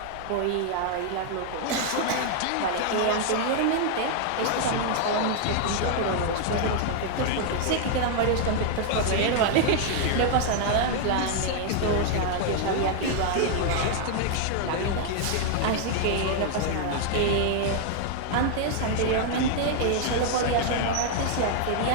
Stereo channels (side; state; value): both; different; correlation 0.00